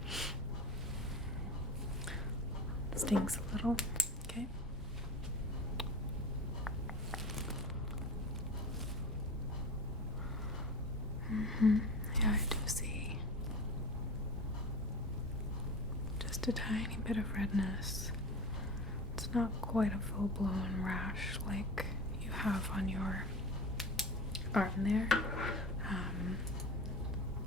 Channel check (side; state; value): both; normal; correlation 0.33